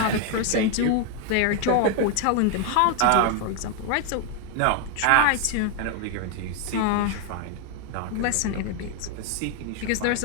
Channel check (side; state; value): both; different; correlation 0.01